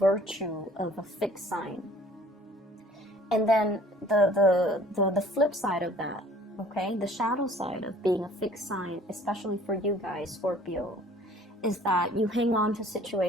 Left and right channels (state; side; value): normal; both; correlation 0.53